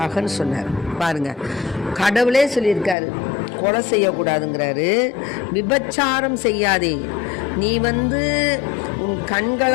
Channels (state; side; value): drops out; right; at 3.0 s